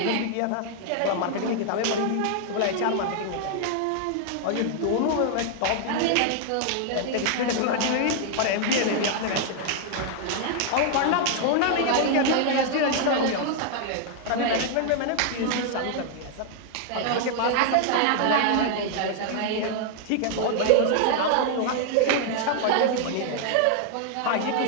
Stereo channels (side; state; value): both; different; correlation 0.00